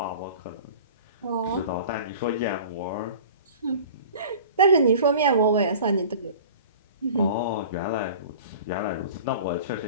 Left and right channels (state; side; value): inverted; both; correlation -0.42